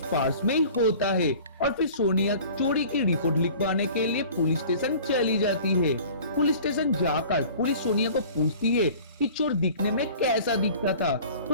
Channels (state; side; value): inverted; both; correlation -0.45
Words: पर्स में ही होता है और फिर सोनिया चोरी की रिपोर्ट लिखवाने के लिए पुलिस स्टेशन चली जाती है। पुलिस स्टेशन जाकर पुलिस सोनिया को पूछती है कि चोर दिखने में कैसा दिखता था,